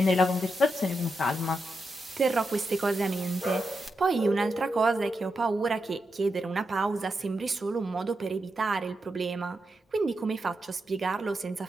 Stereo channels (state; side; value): normal; both; correlation 0.86